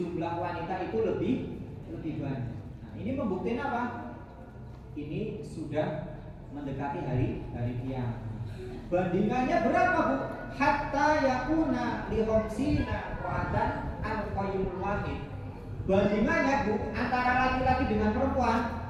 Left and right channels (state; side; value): identical; both; correlation 1.00